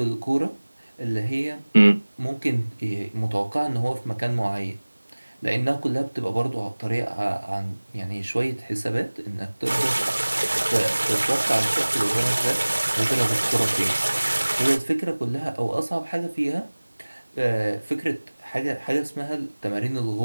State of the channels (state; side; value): inverted; both; correlation -1.00